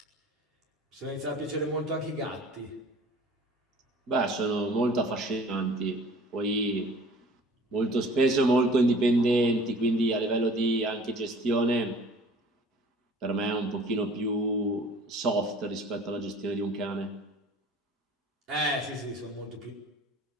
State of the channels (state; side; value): normal; both; correlation 0.48